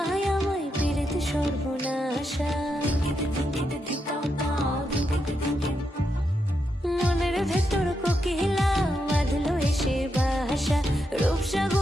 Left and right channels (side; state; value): both; normal; correlation 0.83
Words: আমায় পীড়িত সর্বনাশা। মনের ভেতর কোকিলা বাঁধলো এসে বাসা,